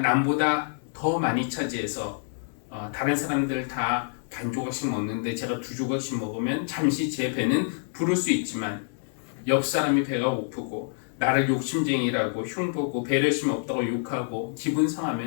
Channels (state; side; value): silent; right; 60 dB below the other